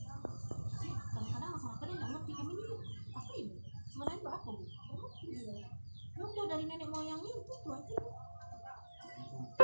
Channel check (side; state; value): both; inverted; correlation -1.00